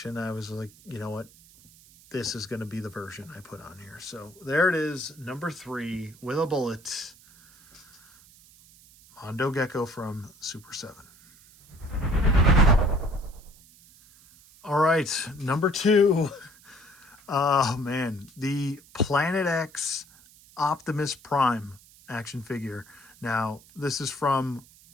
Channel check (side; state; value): right; noise; hiss, 25 dB below the sound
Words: I was like, you know what? This is going to be the version I put on here. So there it is, number 3 with a bullet. Mondo Gecko from Super 7. All right, number 2. Oh, man. The Planet X Optimus Prime action figure. Now, this is from